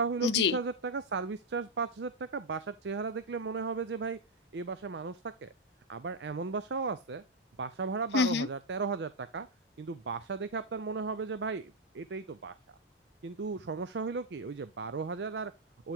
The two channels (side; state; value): both; normal; correlation 0.00